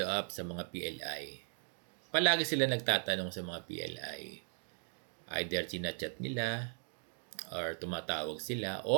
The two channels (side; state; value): left; silent; 53 dB below the other